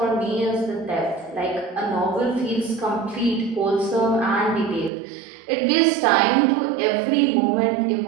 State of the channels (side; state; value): left; drops out; at 4.9 s